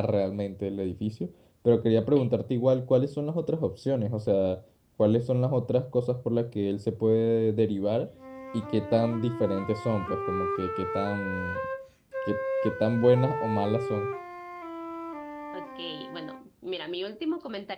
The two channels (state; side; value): identical; both; correlation 1.00